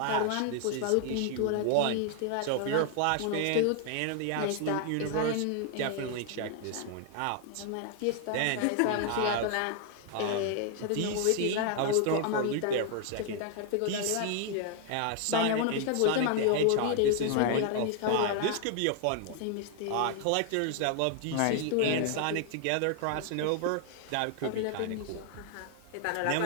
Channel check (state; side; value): different; both; correlation 0.00